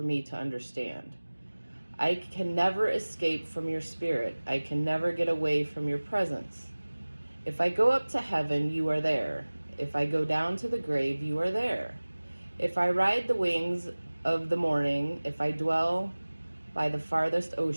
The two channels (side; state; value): both; inverted; correlation -1.00